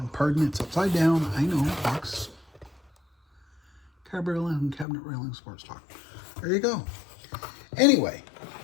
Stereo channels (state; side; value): drops out; right; at 4.9 s